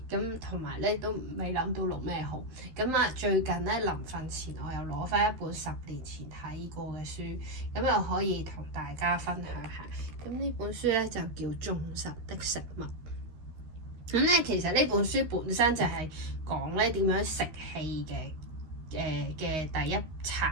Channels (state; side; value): late; left; 13 ms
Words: 咁同埋咧都未諗到錄咩好。咁啊，最近咧臨瞓前我又攞翻一本10年前睇過嘅書，咁又可以同大家分享下。咁呢本書咧就叫《眾神的食物》。咁咧其實呢本書本身就係講咧點樣食氣嘅第一